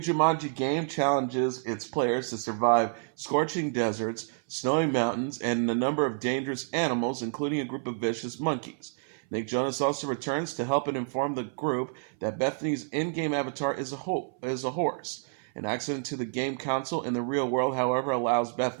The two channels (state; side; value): silent; left; 59 dB below the other